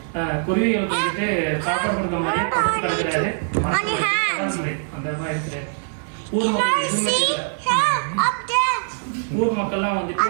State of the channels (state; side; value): silent; left; 59 dB below the other